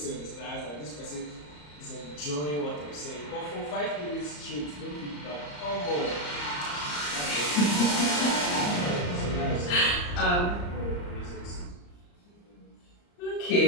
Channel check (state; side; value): late; right; 34 ms